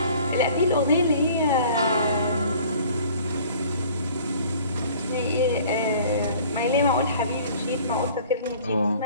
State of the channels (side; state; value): both; inverted; correlation -0.50